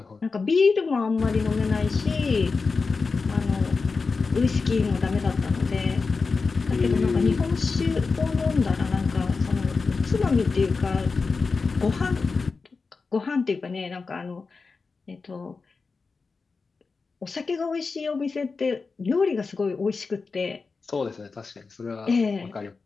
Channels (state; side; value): quieter; right; 4.4 dB